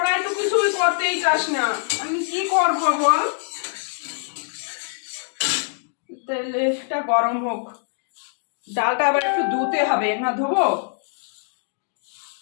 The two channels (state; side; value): silent; right; digital silence